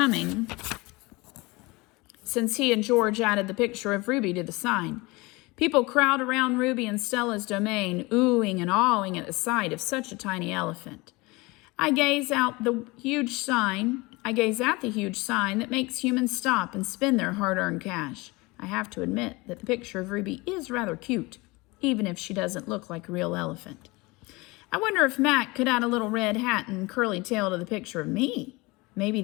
since he and George added the picture of Ruby to the sign. People crowd around Ruby and Stella's domain, oohing and awing at the sight of such a tiny elephant. I gaze at the huge sign that makes humans stop and spend their hard-earned cash. I have to admit that the picture of Ruby is rather cute, even if she doesn't look like a real elephant. I wonder if Mac could add a little red hat and curly tail to the picture of me. Maybe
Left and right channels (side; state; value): right; quieter; 23.7 dB